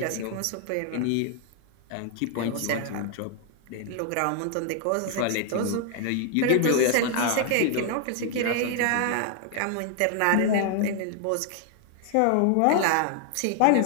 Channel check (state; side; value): different; both; correlation 0.00